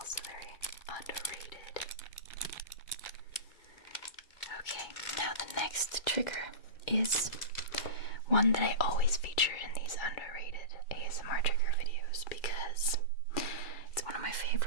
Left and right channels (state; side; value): late; right; 2.3 ms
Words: very underrated. Okay, now the next trigger is one that I always feature in these underrated ASMR trigger videos because it's one of my